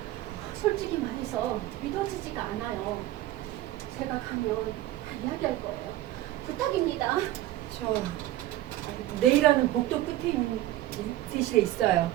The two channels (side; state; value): left; quieter; 15.0 dB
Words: 솔직히 말해서 믿어지지가 않아요. 제가 가면 다 이야기할 거예요. 부탁입니다. 저 내일하는 복도 끝에 있는 대실에 있어요.